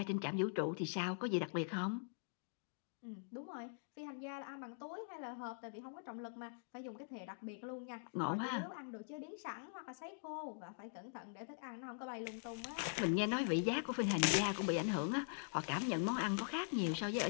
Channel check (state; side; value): silent; right; digital silence